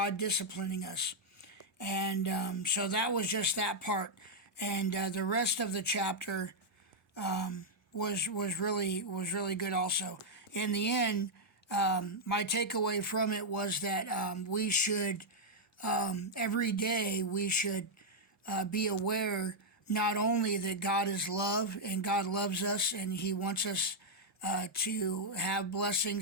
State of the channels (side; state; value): both; normal; correlation -0.04